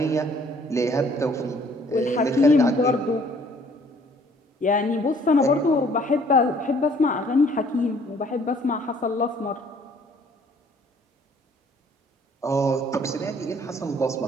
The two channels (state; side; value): normal; both; correlation 0.59